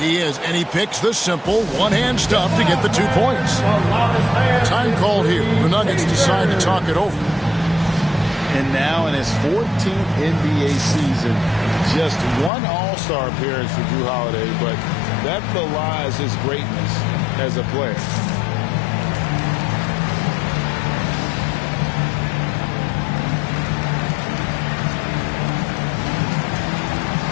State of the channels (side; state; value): right; drops out; at 12.5 s